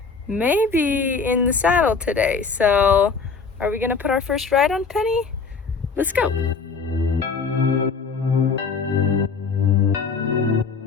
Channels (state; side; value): quieter; right; 5.0 dB